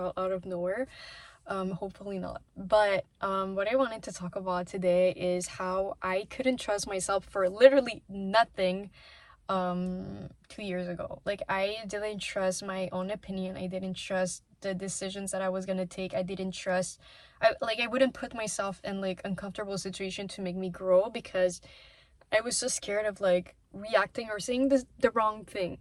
of nowhere. Hopefully not. But what I wanted to talk about today is how I couldn't trust myself for literally nothing 2 years ago. Like, I didn't trust my own opinion. I didn't trust the decisions that I was gonna take. I didn't trust I wouldn't put myself in like uncomfortable situation to make me grow because I was so scared of like reacting or saying the wrong thing,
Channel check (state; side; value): identical; both; correlation 1.00